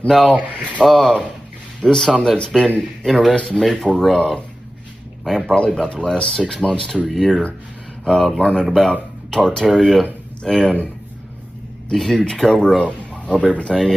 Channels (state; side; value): normal; both; correlation 0.95